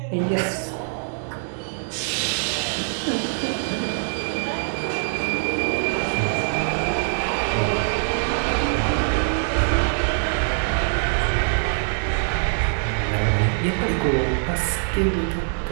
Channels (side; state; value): left; silent; 63 dB below the other